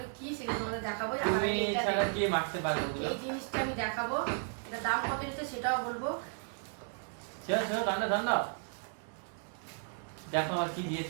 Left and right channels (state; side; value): silent; left; 55 dB below the other